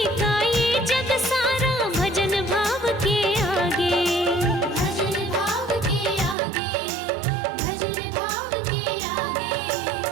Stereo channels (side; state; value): left; drops out; at 6.4 s